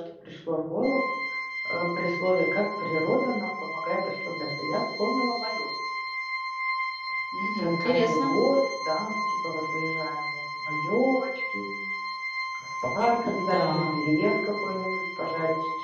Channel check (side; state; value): both; identical; correlation 1.00